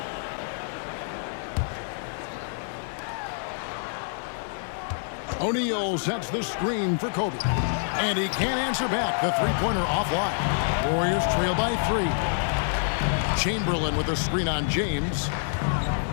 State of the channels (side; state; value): right; silent; 57 dB below the other